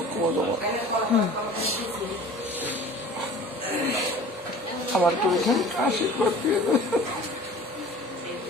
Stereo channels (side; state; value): both; normal; correlation 0.43